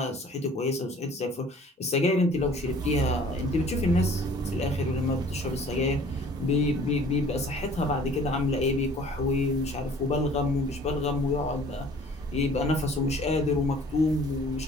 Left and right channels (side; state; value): both; normal; correlation 0.52